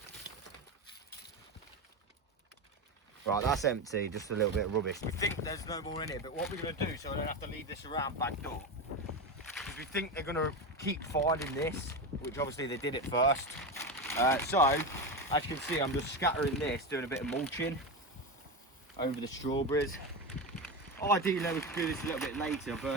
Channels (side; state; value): both; normal; correlation 0.19